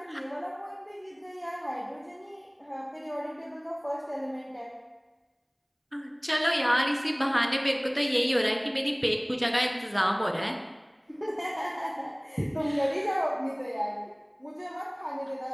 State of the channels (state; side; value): identical; both; correlation 1.00